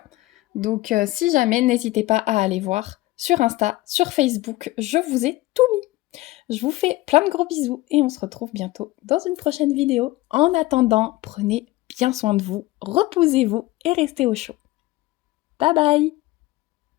donc si jamais, n'hésitez pas à aller voir sur Insta, sur Facebook, je vous ai tout mis. Je vous fais plein de gros bisous et on se retrouve bientôt dans une prochaine vidéo. En attendant, prenez bien soin de vous, reposez-vous et restez au chaud. Bye bye!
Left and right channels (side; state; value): right; quieter; 18.6 dB